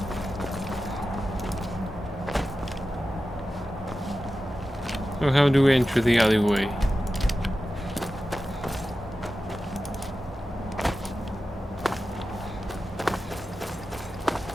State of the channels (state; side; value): normal; both; correlation 0.93